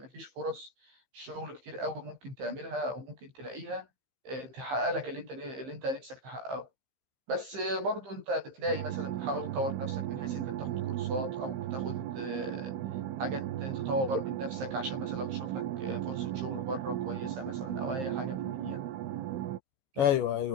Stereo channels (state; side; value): late; left; 15 ms